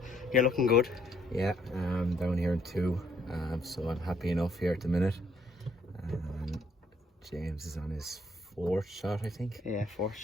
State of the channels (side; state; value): both; normal; correlation 0.68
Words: you're looking good. Yeah, down here in 2, so I'm happy enough here at the minute. James is on his 4th shot, I think. Yeah, 4th